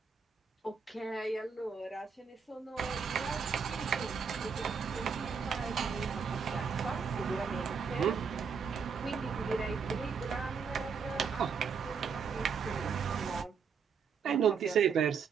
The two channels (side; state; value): left; quieter; 6.0 dB